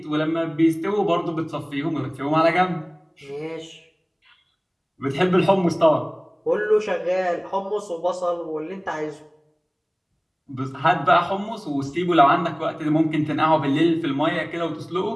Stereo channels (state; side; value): identical; both; correlation 1.00